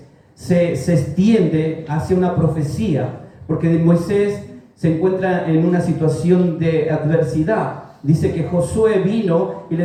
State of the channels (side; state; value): both; identical; correlation 1.00